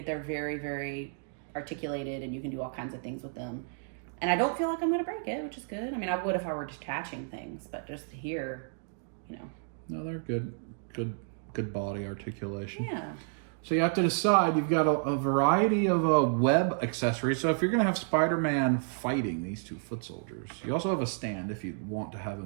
they're very, very articulated, and you can do all kinds of things with them. And I don't feel like I'm going to break it, which is good. I mean, I would if I were detaching things, but just here, you know. No, they're good. Good body articulation. Yeah. So you have to decide. You've got a variety of web accessories. So if you're going to have Spider-Man fighting these 2 foot soldiers, you also have a stand if you want to have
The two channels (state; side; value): silent; left; digital silence